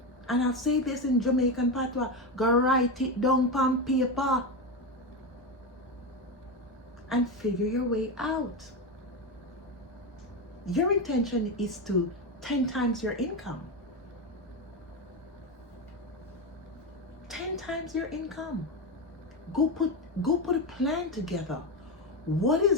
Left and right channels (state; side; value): normal; both; correlation 0.14